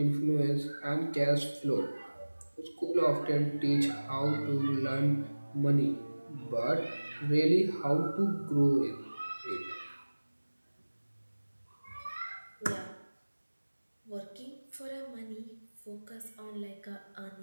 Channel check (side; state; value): both; inverted; correlation -1.00